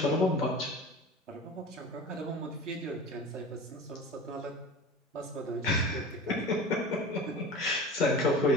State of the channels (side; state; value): both; normal; correlation 0.35